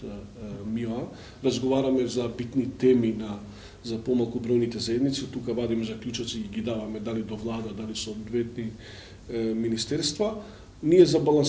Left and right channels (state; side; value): identical; both; correlation 1.00